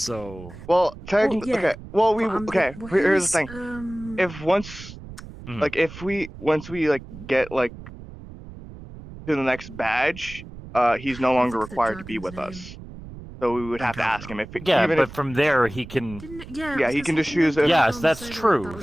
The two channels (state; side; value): noise; right; rumble, 15 dB below the sound